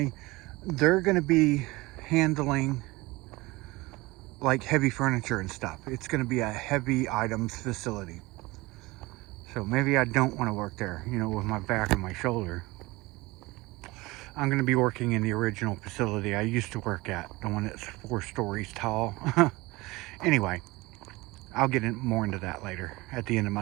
they're going to be handling like heavy furniture and stuff. It's going to be a heavy items facility. So maybe I don't want to work there, you know, with my back and my shoulder. I'm going to be working in the original facility I used to work at, the one that's 4 stories tall. Anyway, I'll get more into that later at the end of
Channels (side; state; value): left; quieter; 21.6 dB